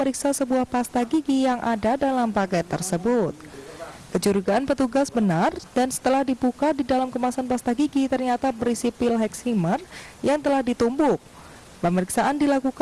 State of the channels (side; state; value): both; identical; correlation 1.00